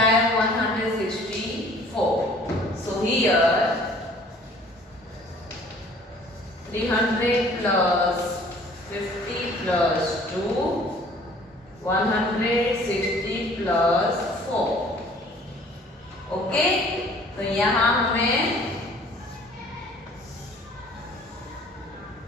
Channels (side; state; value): both; normal; correlation 0.53